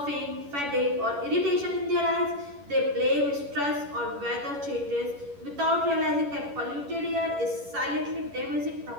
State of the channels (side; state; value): left; late; 11 ms